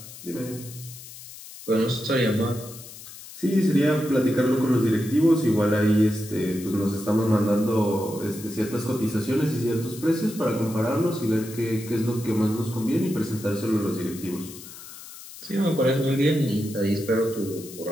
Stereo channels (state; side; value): noise; left; hiss, 15 dB below the sound